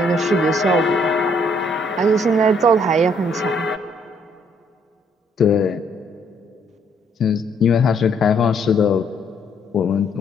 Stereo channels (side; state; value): both; normal; correlation 0.68